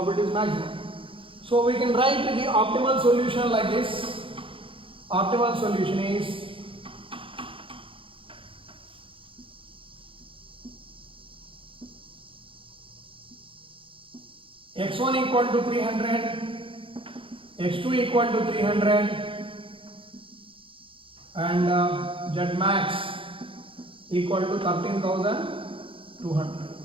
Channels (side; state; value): left; late; 0.25 ms